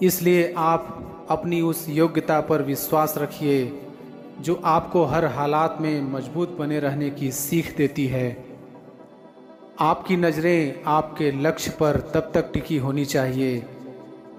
इसलिए आप अपनी उस योग्यता पर विश्वास रखिए जो आपको हर हालात में मजबूत बने रहने की सीख देती है। आपकी नज़रें आपके लक्ष्य पर तब तक टिकी होनी चाहिए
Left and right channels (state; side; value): identical; both; correlation 1.00